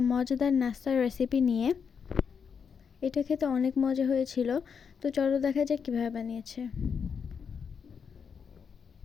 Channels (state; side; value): quieter; right; 6.5 dB